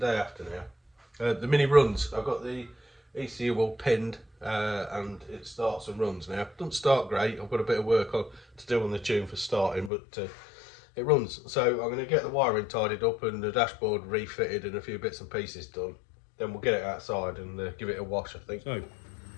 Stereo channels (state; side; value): drops out; right; at 9.9 s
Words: after now. The Mini runs. I've got the ECU all pinned, and it starts and runs now. It doesn't start great. I've got a bit of work to do on the tune for starting, but it runs. So I'm going to get the wiring tidied up and the dashboard refitted and a few bits and pieces done. Then we'll get it outside and give it a wash, I think. So,